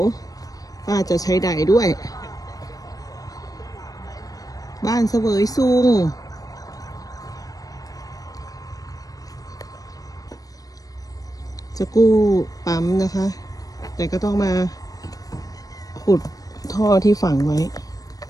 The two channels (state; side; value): late; right; 0.18 ms